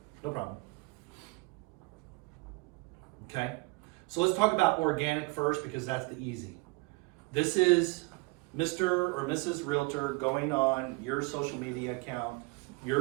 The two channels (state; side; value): quieter; left; 26.2 dB